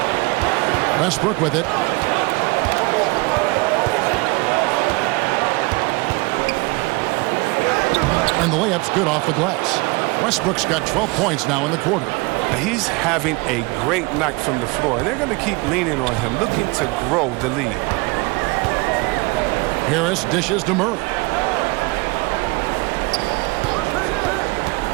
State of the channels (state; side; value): quieter; left; 25.8 dB